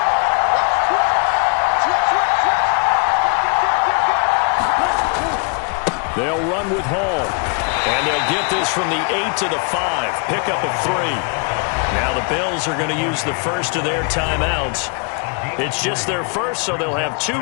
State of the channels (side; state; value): right; quieter; 37.5 dB